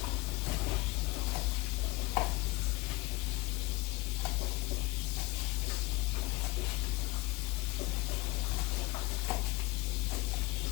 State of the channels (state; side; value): quieter; right; 22.0 dB